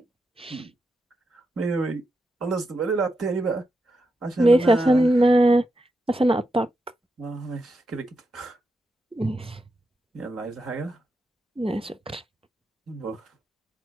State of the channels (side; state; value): both; normal; correlation 0.86